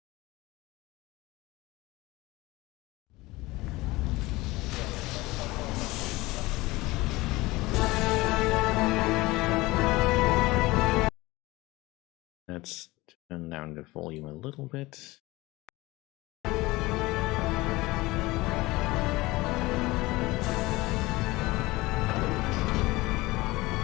Let's turn down the volume a little bit.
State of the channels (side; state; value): right; quieter; 20.6 dB